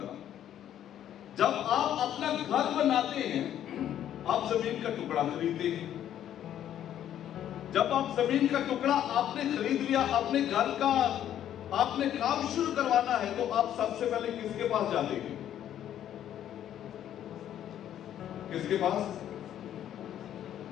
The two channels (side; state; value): right; quieter; 10.9 dB